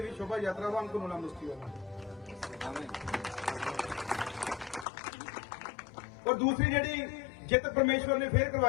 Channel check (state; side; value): drops out; right; at 4.9 s